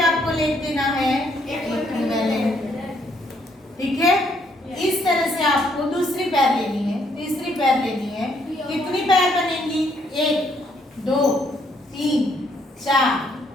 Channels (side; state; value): both; normal; correlation 0.70